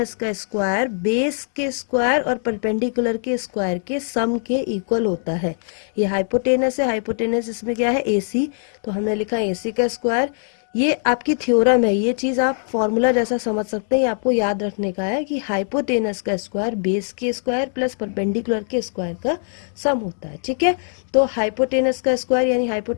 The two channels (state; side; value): silent; right; digital silence